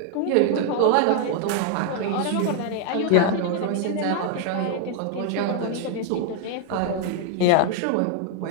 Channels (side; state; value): both; different; correlation 0.00